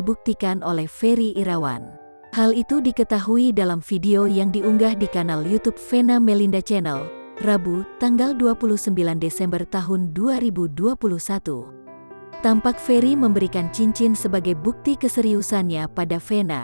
oleh Ferry Irawan. Hal itu diketahui dalam video yang diunggah di kanal YouTube Vena Melinda Channel, Rabu, tanggal 29 Desember tahun 2021. Tampak Ferry memberikan cincin sebagai bukti keseriusannya pada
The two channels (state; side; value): inverted; both; correlation -1.00